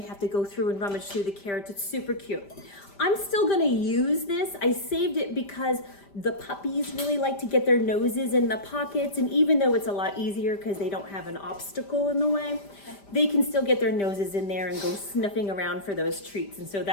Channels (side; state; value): right; late; 5.1 ms